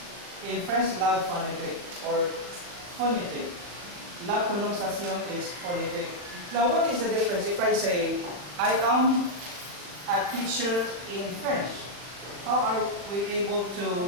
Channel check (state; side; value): late; left; 40 ms